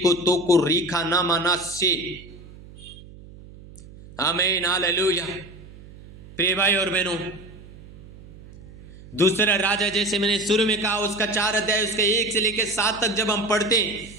तो को रीखा नामा ना से। आमीन, हालेलुया। प्रिय भाई और बहनों, दूसरा राजा, जैसे मैंने शुरू में कहा, उसका 4 अध्याय उसके 1 से लेकर 7 तक जब हम पढ़ते हैं,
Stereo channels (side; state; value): right; noise; hum, 19 dB below the sound